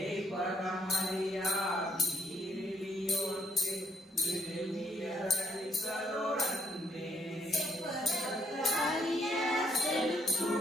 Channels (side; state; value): both; normal; correlation 0.71